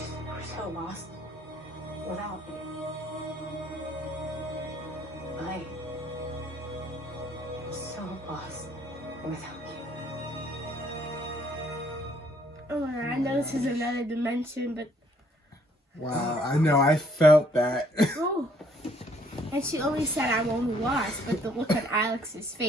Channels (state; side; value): normal; both; correlation 0.64